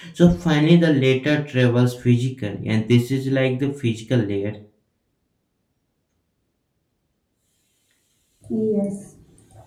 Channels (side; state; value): both; identical; correlation 1.00